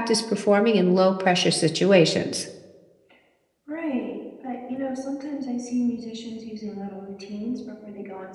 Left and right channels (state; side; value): identical; both; correlation 1.00